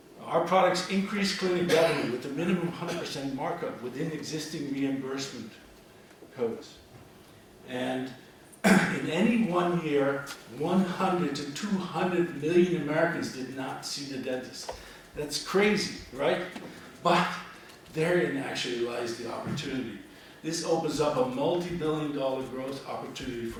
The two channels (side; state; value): both; identical; correlation 1.00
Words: Our products increase clinic revenue with a minimum 100% markup within existing reimbursement codes. And in any one year, 100 to 200 million Americans did not see the dentist. That's crazy, right? But therein actually lies the opportunity. This opens up a multi-billion-dollar growth opportunity for